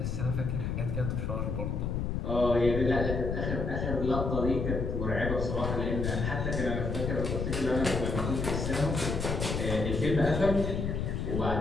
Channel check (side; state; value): left; noise; rumble, 1 dB below the sound